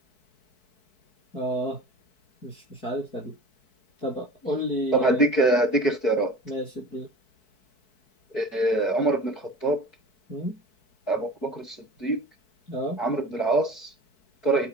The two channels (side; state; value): right; late; 4.6 ms